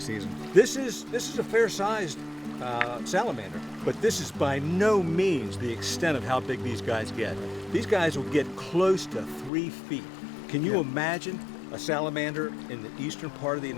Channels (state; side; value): drops out; right; at 9.5 s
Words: season. This is a fair-sized salamander, but this is by no means the extent of how big these guys get. These guys will get close to 3 feet. Can you imagine a salamander in the eastern part of the